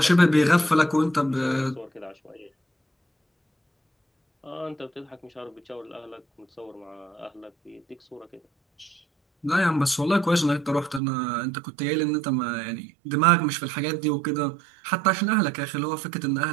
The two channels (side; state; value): left; drops out; at 11.0 s